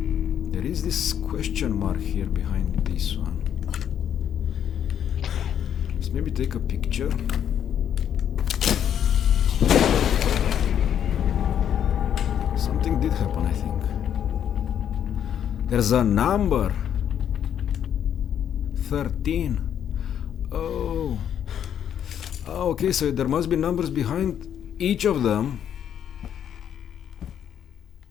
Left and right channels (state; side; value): quieter; right; 9.4 dB